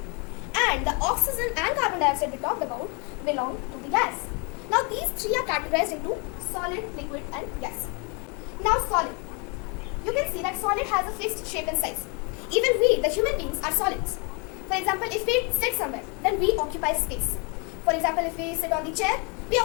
And the oxygen and carbon dioxide we talked about belong to the gas. Now these three are categorized into solid, liquid and gas. Now solid. You can see that solid has a fixed shape and size. Even we, the human beings, are solids. For example, if we sit somewhere, then we occupy space. For example, if we sit on the chair, we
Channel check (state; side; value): quieter; right; 33.0 dB